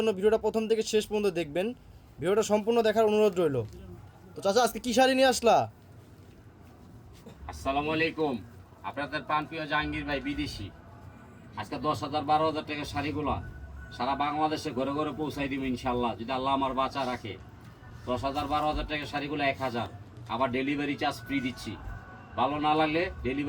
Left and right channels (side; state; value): both; identical; correlation 1.00